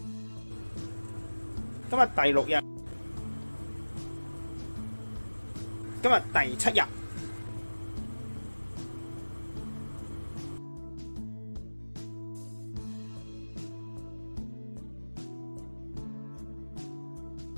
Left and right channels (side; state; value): both; inverted; correlation -1.00